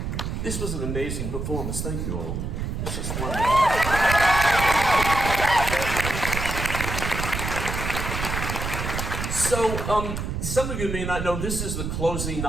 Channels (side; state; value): right; noise; rumble, 3 dB below the sound